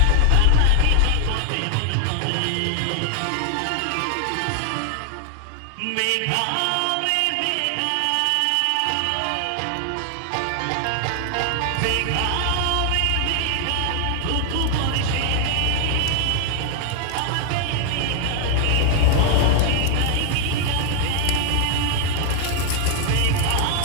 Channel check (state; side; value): different; both; correlation 0.00